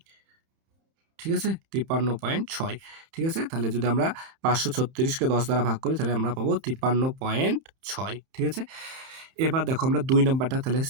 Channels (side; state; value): left; late; 31 ms